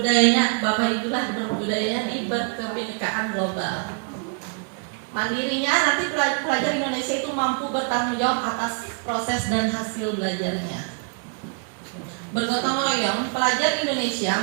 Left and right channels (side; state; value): left; quieter; 39.9 dB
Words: Bapak Ibu lah berbudayanya di berkebinekaan global. Mandirinya nanti pelajar Indonesia itu mampu bertanggung jawab atas proses dan hasil belajarnya. Bergotong royong, pelajar Indonesia